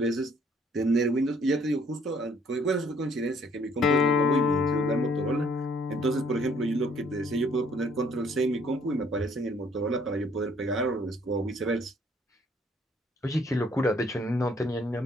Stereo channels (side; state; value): both; normal; correlation 0.62